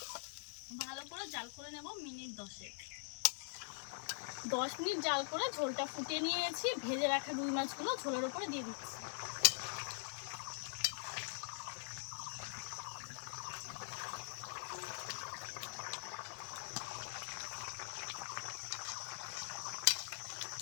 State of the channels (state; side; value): silent; right; digital silence